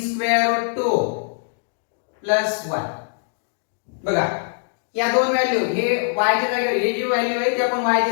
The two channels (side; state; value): right; silent; digital silence